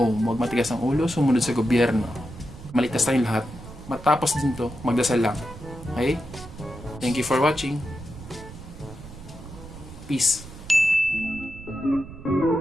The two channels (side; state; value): right; noise; rumble, 15 dB below the sound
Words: huwag matigas ang ulo, sumunod sa gobyerno. Maligtas tayong lahat. Matapos din to, magdasal lang. Okay? Thank you for watching. Peace.